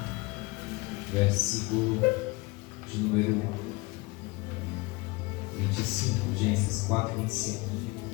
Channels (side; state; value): right; quieter; 24.1 dB